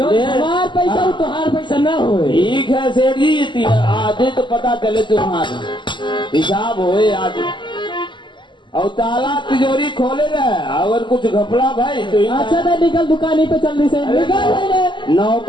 हमार पैसा वो तुम्हार पैसा ना हो। ठीक है सेठ जी आधे तो पता चले तुम्हारा हिसाब होए आज और ताला तिजोरी खोले रहे अगर कुछ घपला भाई तो अच्छा तो निकल दुकानी पे जल्दी से निकल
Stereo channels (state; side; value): late; right; 0.23 ms